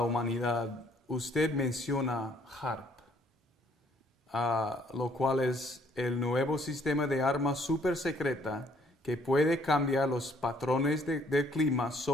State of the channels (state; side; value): normal; both; correlation 0.64